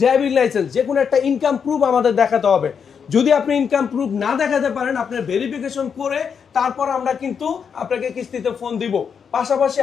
ড্রাইভিং লাইসেন্স, যে কোনো একটা ইনকাম প্রুফ আমাদের দেখাতে হবে। যদি আপনি ইনকাম প্রুফ না দেখাতে পারেন, আপনার ভেরিফিকেশন করে তারপর আমরা কিন্তু আপনাকে কিস্তিতে ফোন দিব। পাশাপাশি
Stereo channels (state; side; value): quieter; right; 6.8 dB